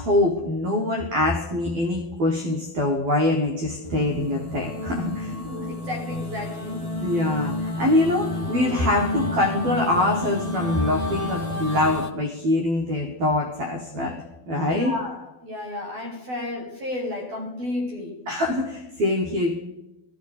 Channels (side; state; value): left; late; 12 ms